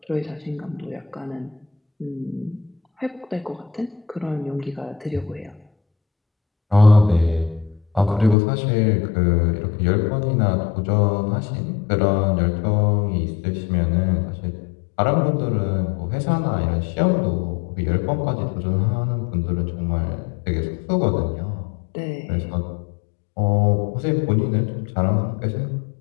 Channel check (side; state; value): right; drops out; at 8.3 s